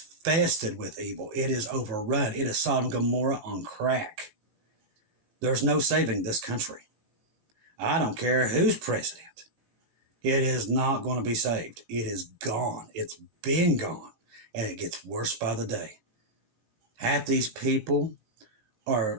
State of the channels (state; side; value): late; left; 19 ms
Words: with evil. It is overrun. It is Sodom and Gomorrah on crack. There's no saving this country. I don't care who's president. It is not going to be saved. It is gone. It's been gone. And it gets worse by the day. Half these people